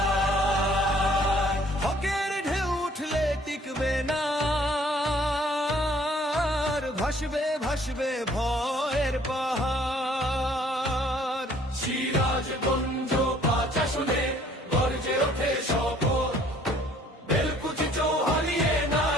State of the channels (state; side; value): normal; both; correlation 0.59